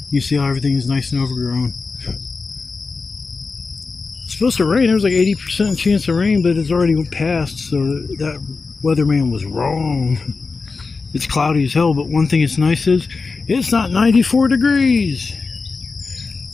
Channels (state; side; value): quieter; right; 4.3 dB